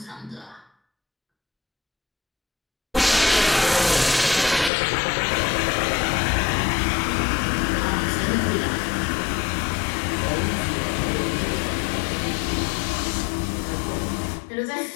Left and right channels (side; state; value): right; drops out; at 4.7 s